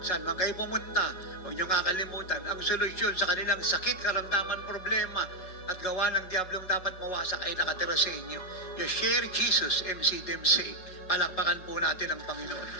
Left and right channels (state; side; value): late; right; 5.4 ms